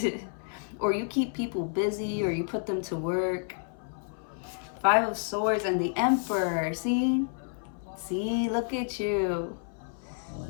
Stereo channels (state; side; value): silent; right; 58 dB below the other